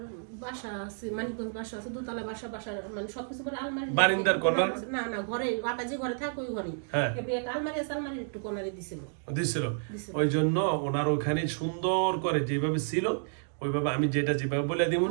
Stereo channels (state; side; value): silent; left; digital silence